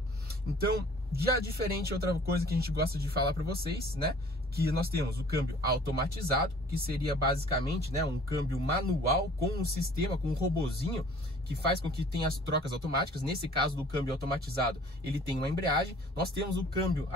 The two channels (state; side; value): normal; both; correlation 0.51